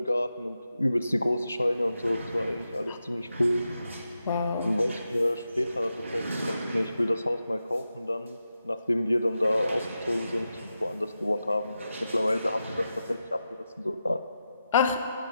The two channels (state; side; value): inverted; both; correlation -0.89